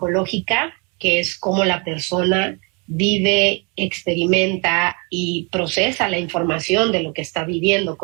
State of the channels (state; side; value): quieter; left; 32.7 dB